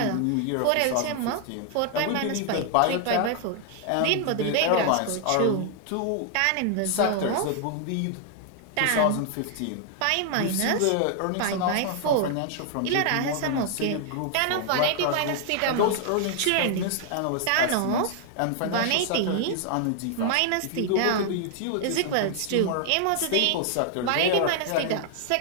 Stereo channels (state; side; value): different; both; correlation 0.00